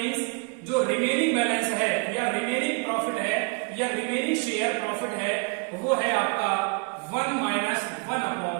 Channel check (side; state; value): left; quieter; 33.4 dB